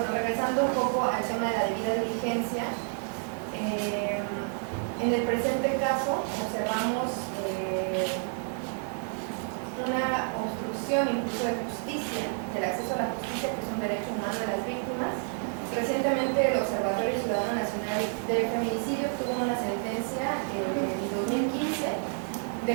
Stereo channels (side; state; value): left; silent; 58 dB below the other